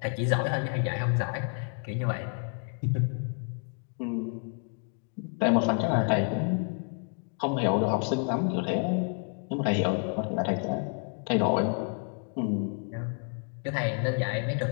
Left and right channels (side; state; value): right; quieter; 39.9 dB